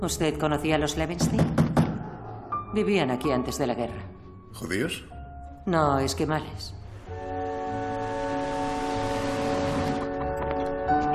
conocía a los Levenstein? Vivían aquí antes de la guerra. ¿Judíos? No, esquimales.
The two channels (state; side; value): identical; both; correlation 1.00